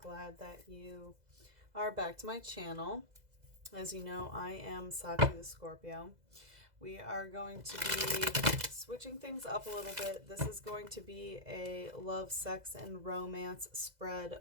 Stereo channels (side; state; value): left; late; 2.0 ms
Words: that you are back to my channel. As you know, I am Sachi the Scorpio. We are going to be switching things up a little bit. This is going to be a love, sex, and romance spread